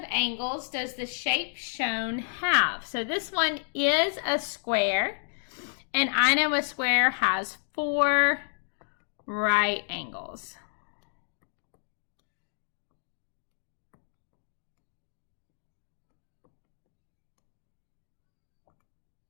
angles does the shape shown have? So this one is a square, and I know a square has 4 right angles.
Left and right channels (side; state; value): right; silent; digital silence